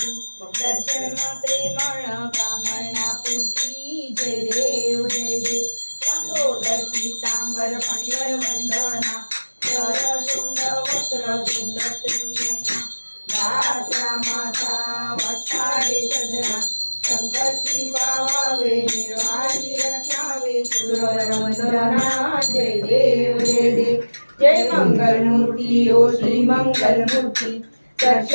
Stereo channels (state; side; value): inverted; both; correlation -1.00